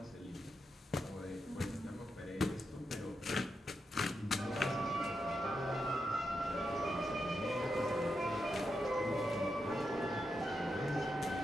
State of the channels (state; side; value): normal; both; correlation 0.86